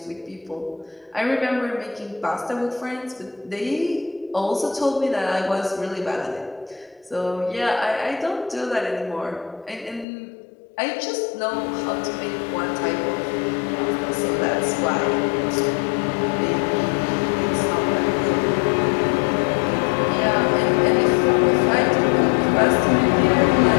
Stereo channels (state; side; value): drops out; right; at 10.1 s